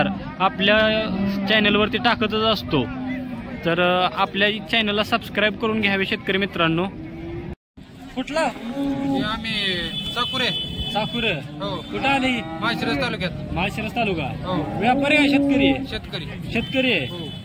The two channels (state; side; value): identical; both; correlation 1.00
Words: आपल्या चॅनलवरती टाकतच असतो, तर आपल्या चॅनलला सबस्क्राइब करून घ्यावे शेतकरी मित्रांनो। कुठला आम्ही साकुरे हो कुठं आली? माळशिरस तालुक्यात। माळशिरस तालुका। हो व्यापारी आहे शेतकरी? शेतकरी आहे। हो।